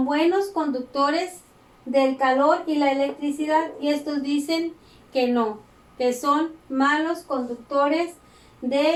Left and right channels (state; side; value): identical; both; correlation 1.00